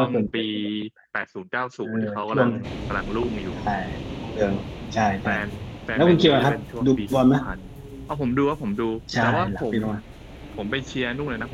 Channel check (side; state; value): both; identical; correlation 1.00